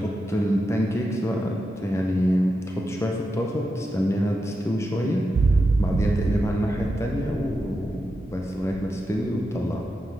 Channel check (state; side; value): normal; both; correlation 0.88